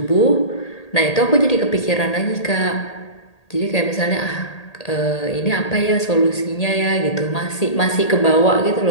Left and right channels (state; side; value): late; right; 1.8 ms